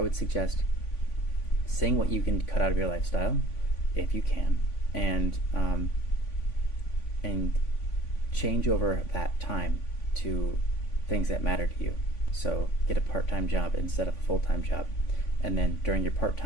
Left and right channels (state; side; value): late; right; 3.5 ms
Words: would suggest seeing what you can cut out of your lifestyle, if you can, and change over that time to things that matter to you. So get a part-time job instead of a full-time job, and then during your